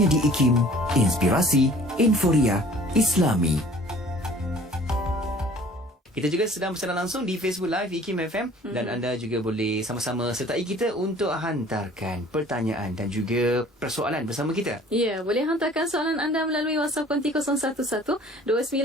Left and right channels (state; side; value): normal; both; correlation 0.51